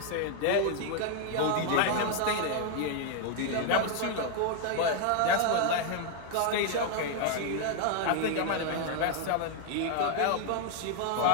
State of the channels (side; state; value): both; different; correlation 0.00